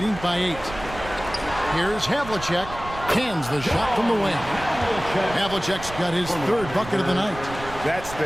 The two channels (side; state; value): right; noise; rumble, 13 dB below the sound